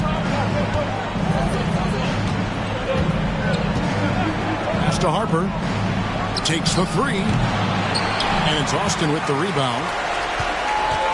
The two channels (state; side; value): identical; both; correlation 1.00